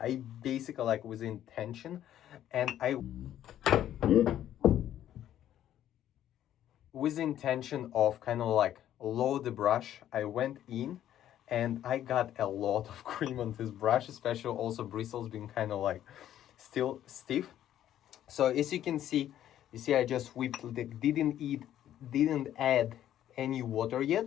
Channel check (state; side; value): quieter; right; 11.6 dB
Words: basically, like, with intention, and with the intention of kind of like load the brush, I went in and I got a lot of cream on this brush, especially also bristles being kind of like still stiff. So as you can see, I just whipped, didn't add any water yet.